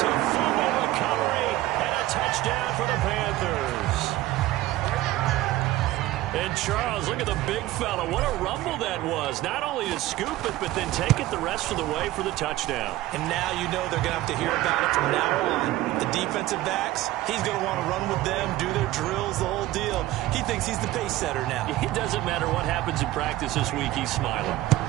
a fumble recovery and a touchdown for the Panthers. And Charles, look at the big fella. What a rumble that was. Not only to scoop it, but then take it the rest of the way for the touchdown. And now you know they're going to have to hear about it from now on. The defensive backs, he's going to want to run with them, do their drills, the whole deal. He thinks he's the pace setter now. It doesn't matter what happens in practice this week. He's smiling.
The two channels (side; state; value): left; quieter; 16.2 dB